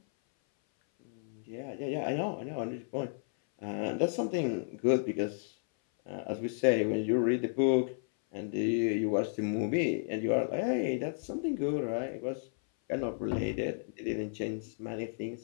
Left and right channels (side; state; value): right; silent; 56 dB below the other